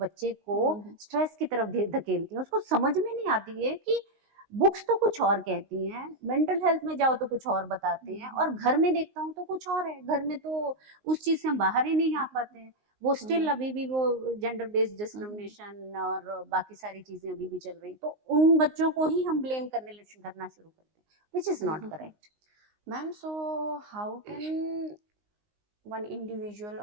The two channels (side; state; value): left; late; 19 ms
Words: को स्ट्रेस की तरफ धकेलती हैं, उसको समझ में नहीं आती है कि बुक्स तो कुछ और कहती हैं, मेंटल हेल्थ में जाओ तो कुछ और बताते हैं, और घर में देखता हूँ तो कुछ और है, घर में तो उस चीज से हम बाहर ही नहीं आ पाते हैं। वो स्टिल अभी भी वो जेंडर बेस्ड डिस्क्रिमिनेशन और बाकी सारी चीजें अभी भी चल रही, तो उन बच्चों को ही हम ब्लेम करना शुरू करते हैं, which is not correct. Ma'am, so how can one individual